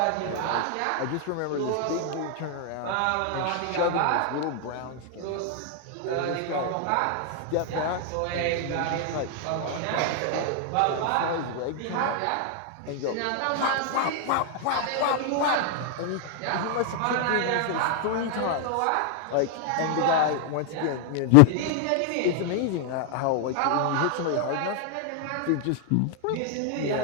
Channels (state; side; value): different; both; correlation 0.00